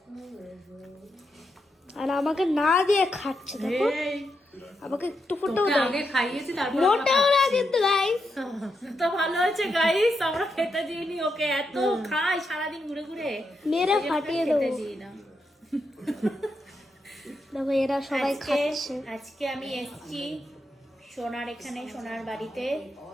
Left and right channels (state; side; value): normal; both; correlation 0.84